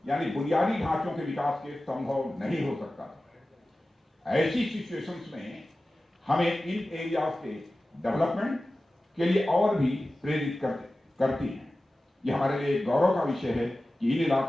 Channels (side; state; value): both; normal; correlation 0.95